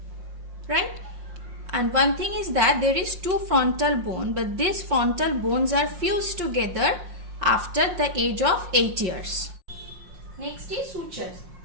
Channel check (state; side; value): late; left; 5.6 ms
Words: right? And one thing is that there is two frontal bone, but these frontal bones are fused together after the age of 8 years. Next is sutures.